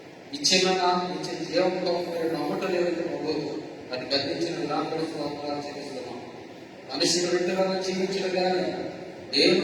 ఇచ్చే జీవంతో నమ్మటలేదు ప్రభు. అది గద్దించిన విధానం చెల్లిస్తున్నాం. మనిషి రొట్టె వలన జీవించడం కానీ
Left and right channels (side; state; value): both; identical; correlation 1.00